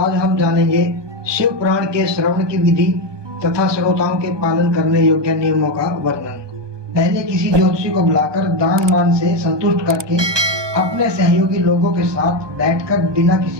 हम जानेंगे शिव पुराण के श्रवण की विधि तथा श्रोताओं के पालन करने योग्य नियमों का वर्णन। पहले किसी ज्योतिषी को बुलाकर दान मान से संतुष्ट करके अपने सहयोगी लोगों के साथ बैठकर बिना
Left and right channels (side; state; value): left; late; 1.2 ms